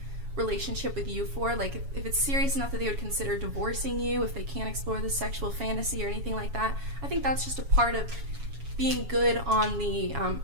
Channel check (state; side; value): late; left; 7.2 ms